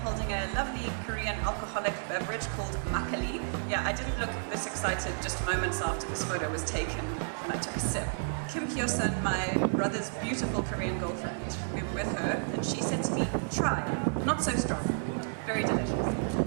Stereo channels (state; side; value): silent; left; 57 dB below the other